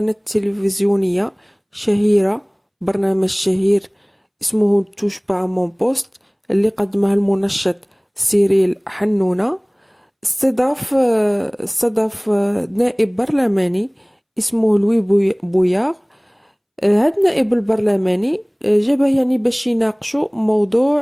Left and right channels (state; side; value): identical; both; correlation 1.00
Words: تلفزيونية شهيرة، برنامج شهير اسمه توش با مون بوست اللي قدمه المنشط سيريل حنونة. استضاف نائب برلماني اسمه لوي بوياغ. هاد النائب البرلماني جابه يعني باش يناقشوا